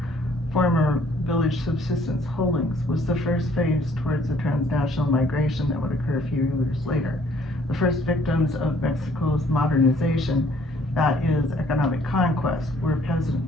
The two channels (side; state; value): both; normal; correlation 0.61